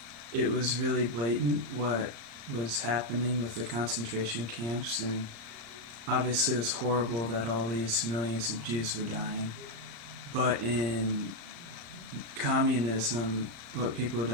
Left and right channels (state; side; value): late; left; 35 ms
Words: it was really blatant what was happening with the concentration camps, and obviously it was horrible that all these millions of Jews were dying. But in communism, what people